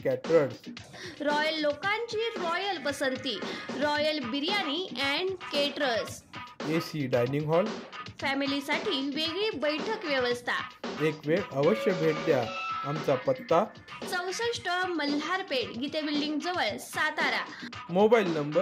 caterers. Royal लोकांची रॉयल पसंती, royal biryani and caterers. AC dining hall, फॅमिलीसाठी वेगळी बैठक व्यवस्था। एक वेळ अवश्य भेट द्या। आमचा पत्ता 64 मल्हारपेठ, गीते बिल्डिंग जवळ, सातारा। Mobile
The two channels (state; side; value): identical; both; correlation 1.00